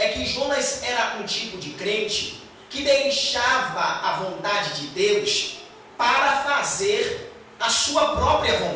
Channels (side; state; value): both; identical; correlation 1.00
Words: que Jonas era um tipo de crente que deixava a vontade de Deus para fazer a sua própria